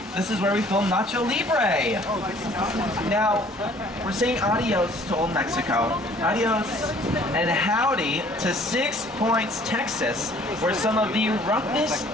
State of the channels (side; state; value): both; normal; correlation 0.55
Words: this is where we film Nacho Libre. Now, we're saying adios to Old Mexico, adios and howdy to 6 Points, Texas, where some of the roughest,